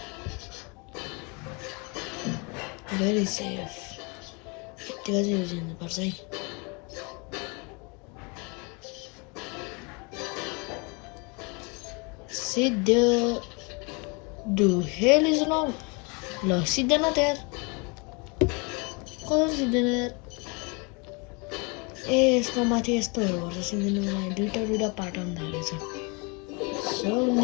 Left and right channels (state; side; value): quieter; right; 31.0 dB